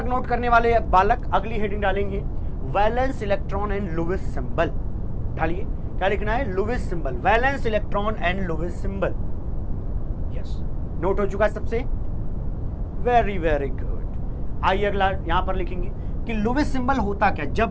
नोट करने वाले बालक अगली हेडिंग डालेंगे, valence electron and Lewis symbol. डालिए, क्या लिखना है? Lewis symbol, valence electron and Lewis symbol. Yes, note हो चुका है सबसे? Very very good. आइए अगला यहां पर लिखेंगे कि लुईस सिंबल होता क्या।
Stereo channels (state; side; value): identical; both; correlation 1.00